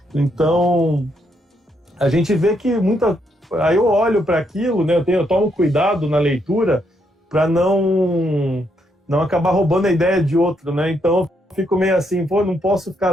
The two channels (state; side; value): normal; both; correlation 0.76